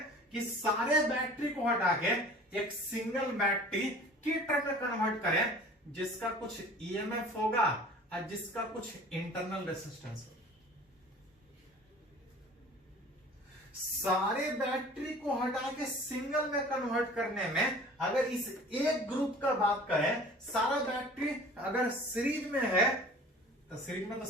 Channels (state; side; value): normal; both; correlation 0.45